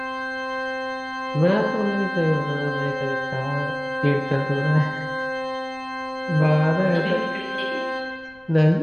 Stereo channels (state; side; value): noise; left; rumble, 29 dB below the sound